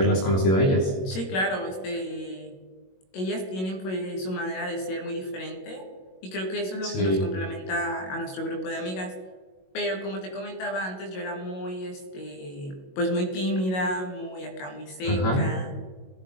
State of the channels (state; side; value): late; right; 22 ms